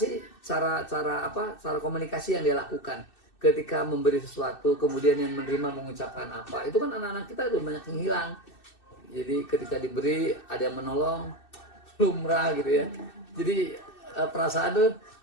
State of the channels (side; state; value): right; late; 2.6 ms